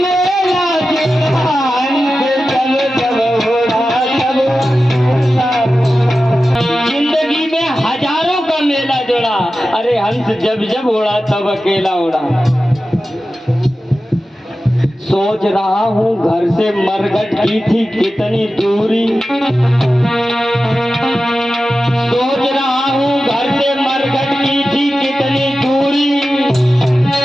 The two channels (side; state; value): both; normal; correlation 0.93